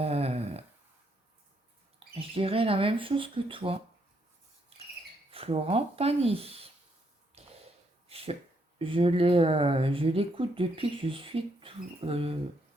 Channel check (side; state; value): both; normal; correlation 0.75